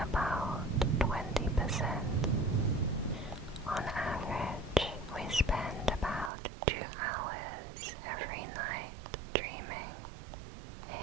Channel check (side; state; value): left; drops out; at 6.3 s